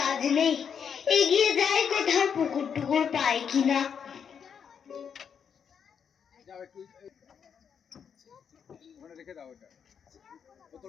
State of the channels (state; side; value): quieter; right; 7.3 dB